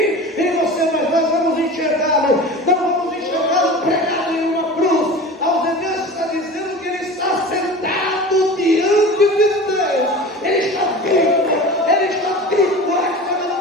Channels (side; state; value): both; normal; correlation 0.35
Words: em você, mas nós vamos enxergá-lo. Não vamos enxergá-lo pregado em uma cruz. Aos Hebreus está dizendo que ele está sentado diante de Deus. Ele está vivo, ele está vivo. Esta